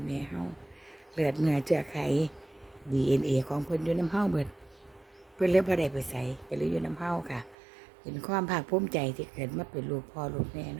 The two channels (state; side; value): drops out; left; at 7.6 s